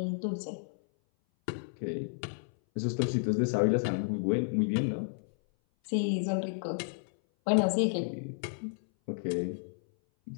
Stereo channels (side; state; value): right; silent; 57 dB below the other